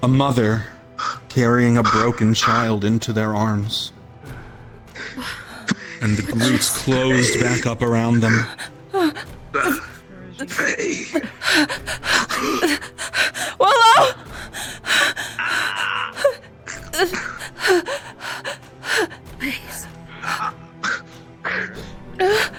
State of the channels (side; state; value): both; identical; correlation 1.00